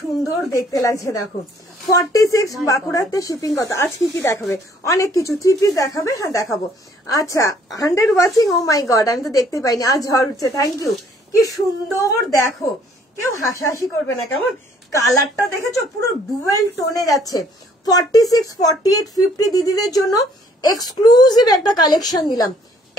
সুন্দর দেখতে লাগছে দেখো। 46 বাঁকুড়াতে শিপিং কত? আজ কি দেখাবে? অনেক কিছু, 3 পিস দেখাবে, হ্যাঁ দেখাবো। আচ্ছা 100 ওয়াচিং, ও মাই গড আমি তো দেখতে পাইনি, আজ ঝড় উঠছে, থ্যাংক ইউ। কি সুন্দর দেখো, কেউ হাসাহাসি করবে না কেমন? কালারটা দেখেছো পুরো ডুয়েল টোনে যাচ্ছে। 46, 48, 50 দিদিদের জন্য এক্সক্লুসিভ একটা কালেকশন দিলাম,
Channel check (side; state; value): both; normal; correlation 0.62